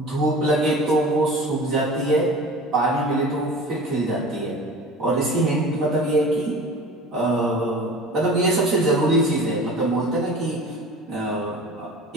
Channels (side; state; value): both; normal; correlation 0.39